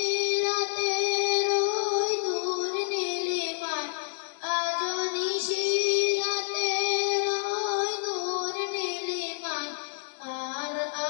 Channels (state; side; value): silent; right; digital silence